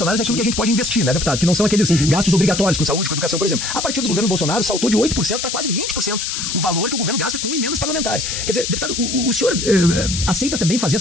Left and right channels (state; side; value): noise; left; hiss, 3 dB below the sound